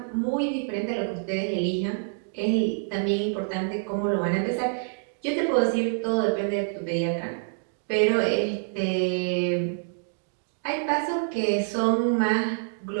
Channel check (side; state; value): left; silent; digital silence